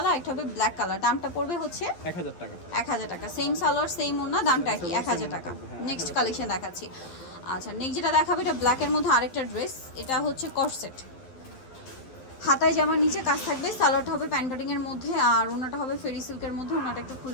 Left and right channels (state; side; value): late; right; 11 ms